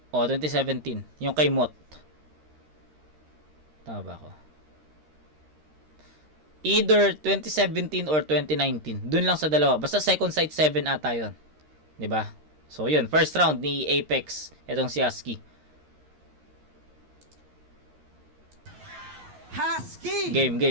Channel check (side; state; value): left; late; 13 ms